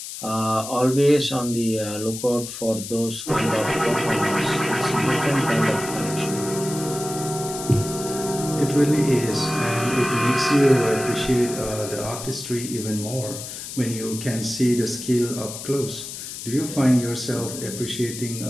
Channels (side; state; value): left; noise; hiss, 9 dB below the sound